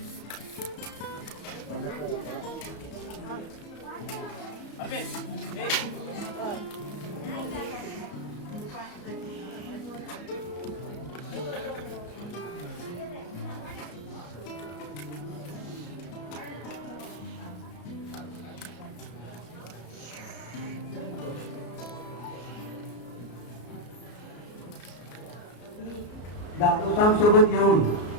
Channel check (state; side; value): late; right; 33 ms